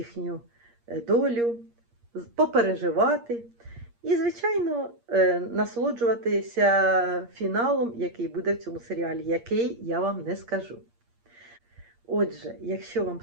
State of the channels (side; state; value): left; late; 8.6 ms